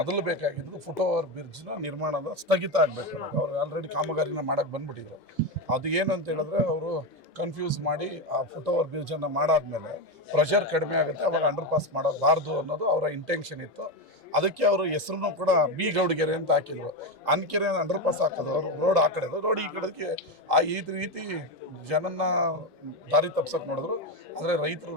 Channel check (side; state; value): both; normal; correlation 0.12